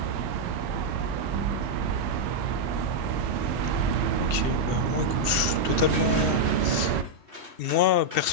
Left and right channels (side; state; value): left; late; 2.7 ms